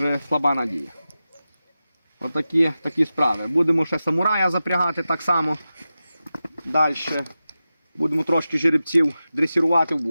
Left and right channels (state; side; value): inverted; both; correlation -0.93